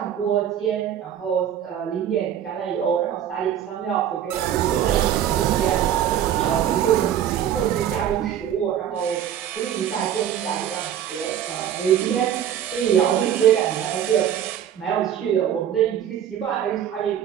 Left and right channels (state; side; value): quieter; left; 10.0 dB